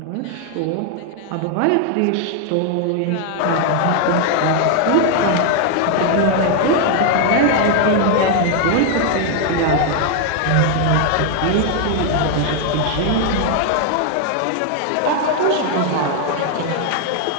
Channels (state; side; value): different; both; correlation 0.00